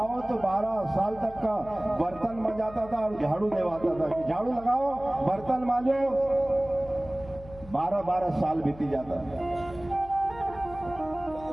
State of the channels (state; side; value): noise; left; hum, 18 dB below the sound